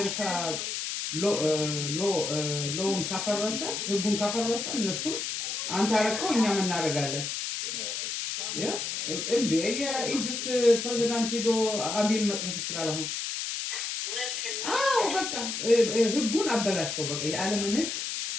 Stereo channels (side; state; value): left; noise; hiss, 3 dB below the sound